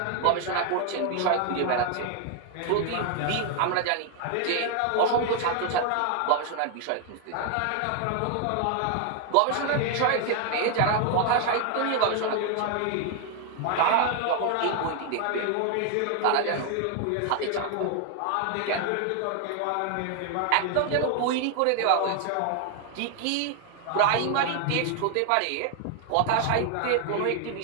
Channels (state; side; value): different; both; correlation 0.00